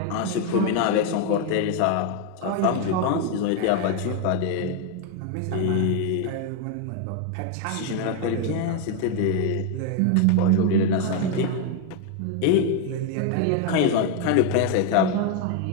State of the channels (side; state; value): both; different; correlation 0.01